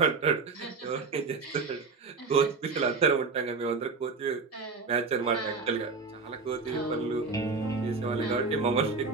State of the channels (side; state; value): left; quieter; 4.4 dB